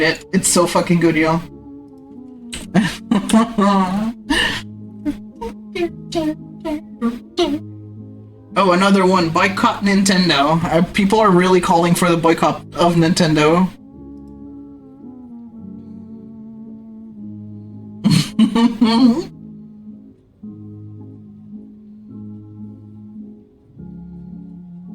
it. It's so fucking good, y'all. Oh, another one. Boycott Nintendo. People are really calling for the boycott of Nintendo.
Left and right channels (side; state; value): both; identical; correlation 1.00